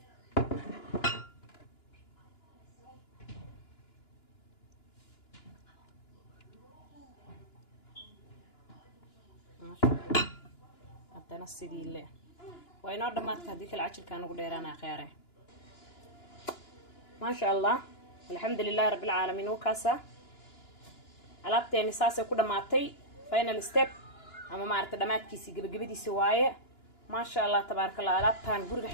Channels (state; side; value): late; right; 2.9 ms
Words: ما شاء الله هذانا سيدي اللي وينور دماتك هذيك العشر كانوا قديرانا خياره ما شاء الله الحمد لله رب العالمين وكاسة alaabteeni saasay ku dhamaatay final step ama maarta dhamaadkiisii gabagabadiisa waaye ما شاء الله تبارك الله alaabtan guriga